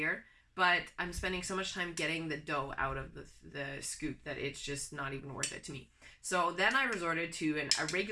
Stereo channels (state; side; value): identical; both; correlation 1.00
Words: but I'm spending so much time getting the dough out of the scoop that it's just not even worth it to me. So then I resorted to a